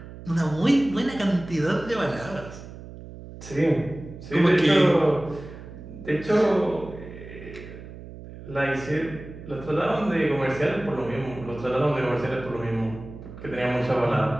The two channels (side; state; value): right; noise; hum, 14 dB below the sound